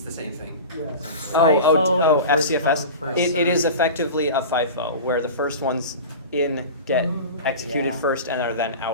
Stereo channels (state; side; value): inverted; both; correlation -0.31